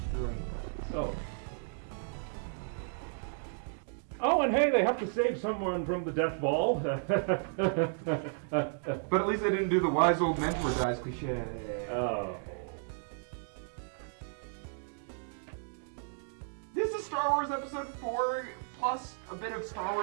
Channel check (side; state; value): left; silent; digital silence